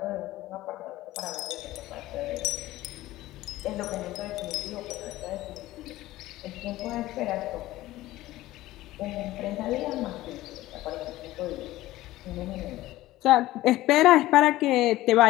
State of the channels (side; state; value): right; quieter; 16.5 dB